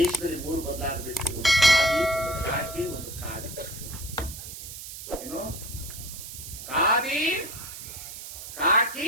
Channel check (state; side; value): noise; right; hiss, 11 dB below the sound